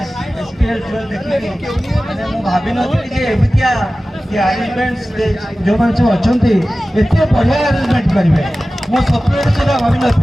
एसपीएल 12 देखिए, मैंने मु भाभी नथी जे एबितिया ये अरेंजमेंट्स जो माने सब अछंती एते बढ़िया अरेंजमेंट करिवे, मो सपने सुधा भाभी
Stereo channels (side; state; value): both; normal; correlation 0.96